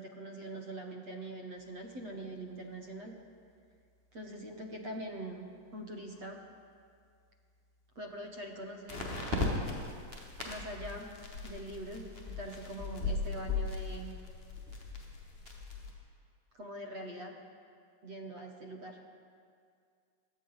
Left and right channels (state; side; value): late; left; 8.1 ms